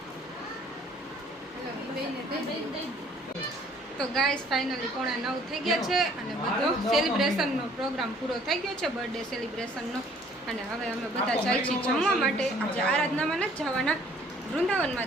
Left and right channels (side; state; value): both; normal; correlation 0.58